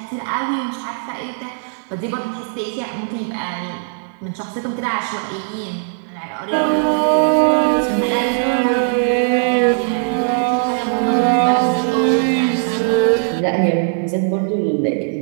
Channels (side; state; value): left; silent; digital silence